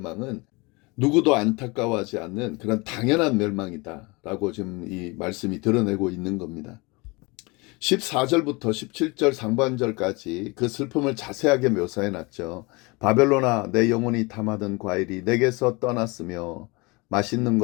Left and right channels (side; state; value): right; quieter; 26.3 dB